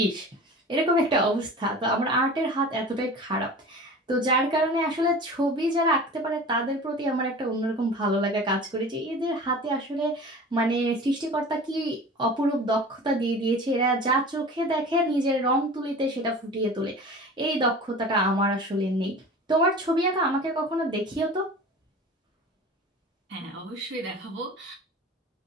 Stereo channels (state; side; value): normal; both; correlation 0.38